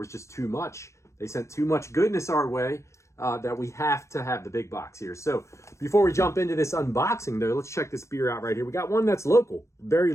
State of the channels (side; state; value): right; late; 0.14 ms